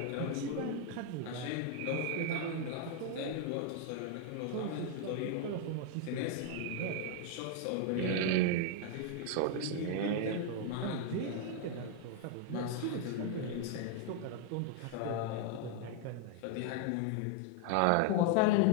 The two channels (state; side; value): different; both; correlation 0.00